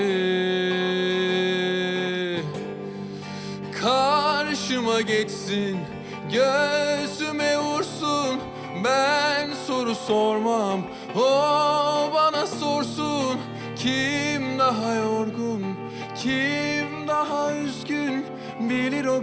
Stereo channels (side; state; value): both; identical; correlation 1.00